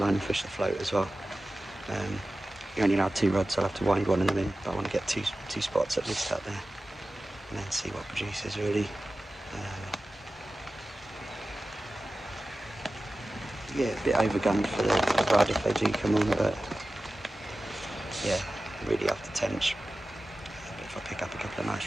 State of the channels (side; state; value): both; normal; correlation 0.95